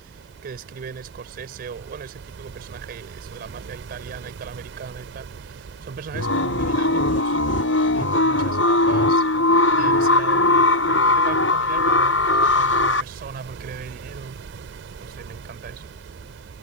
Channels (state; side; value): normal; both; correlation -0.04